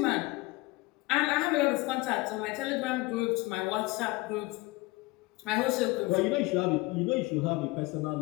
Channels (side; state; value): right; quieter; 22.6 dB